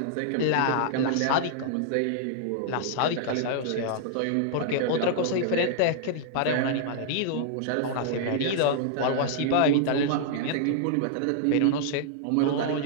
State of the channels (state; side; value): different; both; correlation -0.01